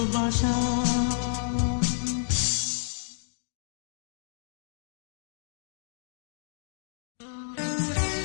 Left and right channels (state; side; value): silent; right; digital silence